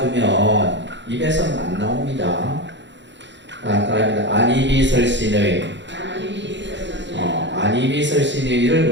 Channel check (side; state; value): left; late; 0.53 ms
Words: 입에서는 안 나옵니다. 그러니까 안이비설신의 안이비설신의를